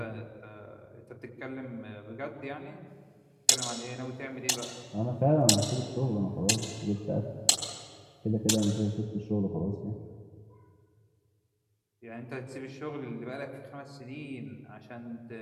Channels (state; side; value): identical; both; correlation 1.00